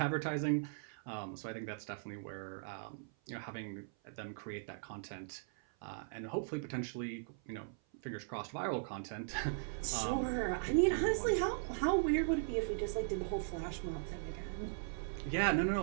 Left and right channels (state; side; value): silent; left; 52 dB below the other